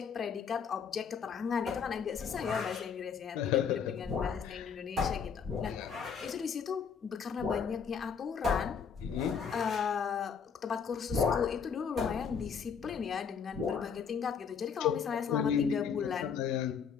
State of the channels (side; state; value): right; quieter; 6.6 dB